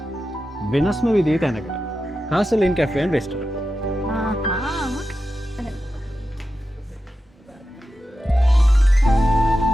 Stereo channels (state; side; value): normal; both; correlation 0.91